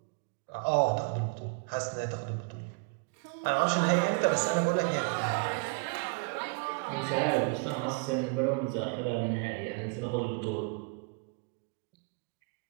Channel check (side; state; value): left; quieter; 31.0 dB